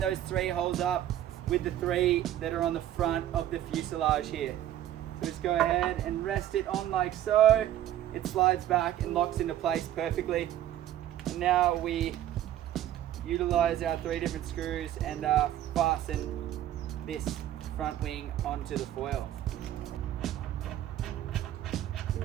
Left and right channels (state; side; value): quieter; left; 12.3 dB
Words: 3 holes up with the 3 that are on the front of the fuselage here. So just go ahead and rest it on like so. It slides back and locks into place perfectly. And now we utilize our 3 different screws and fasten this front wing onto the foil.